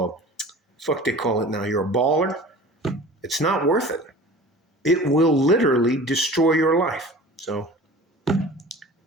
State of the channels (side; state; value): both; normal; correlation 0.41